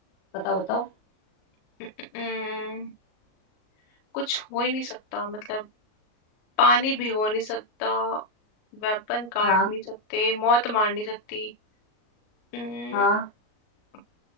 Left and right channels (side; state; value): right; late; 38 ms